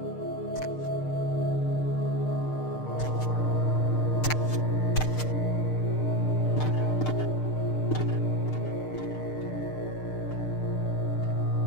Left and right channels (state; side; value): late; right; 6.6 ms